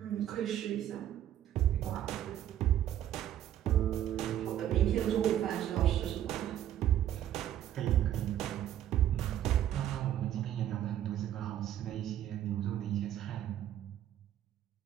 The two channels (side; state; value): left; quieter; 11.5 dB